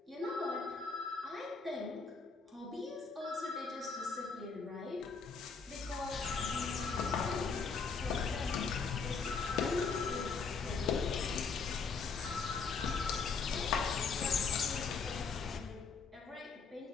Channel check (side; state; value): right; quieter; 5.0 dB